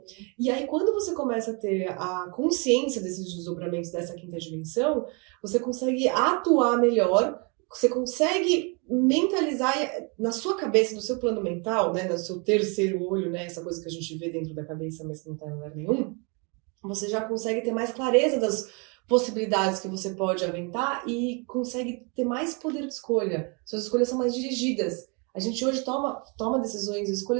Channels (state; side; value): quieter; left; 33.2 dB